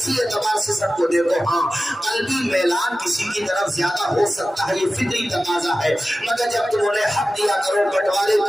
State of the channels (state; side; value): normal; both; correlation 0.95